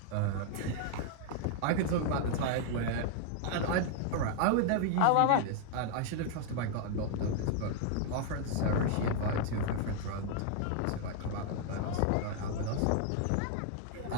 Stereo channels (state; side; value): different; both; correlation 0.00